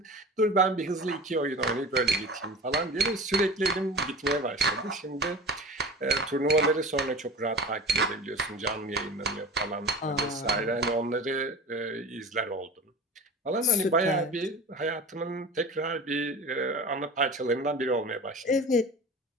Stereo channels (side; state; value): both; normal; correlation 0.34